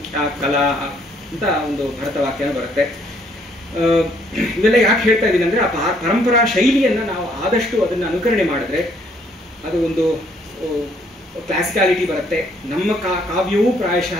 ಕಲಾ ಅಂತ ಒಂದು ಭರತವಾಕ್ಯನ ಬರುತ್ತೆ. ಇವೆಲ್ಲ ಯಾಕೆ ಹೇಳ್ತಾ ಇದ್ದೀನಿ ಅಂದ್ರೆ, ಆ ಪರಂಪರಾ ಶೈಲಿಯನ್ನ ನಾವು ಆದಷ್ಟು ಅದನ್ನ ಅನುಕರಣೆ ಮಾಡಿದ್ರೆ ಅದು ಒಂದು ಕ್ಲಾಸಿಕಾಲಿಟಿ ಬರುತ್ತೆ. ನಮ್ಮ ಕಾವ್ಯವೂ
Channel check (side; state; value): both; normal; correlation 0.66